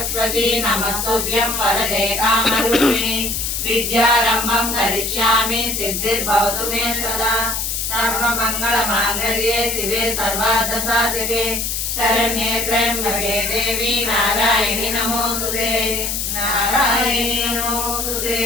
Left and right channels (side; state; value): left; noise; hiss, 2 dB below the sound